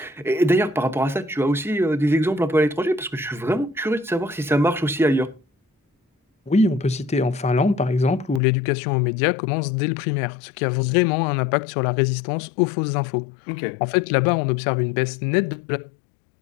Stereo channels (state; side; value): drops out; right; at 8.4 s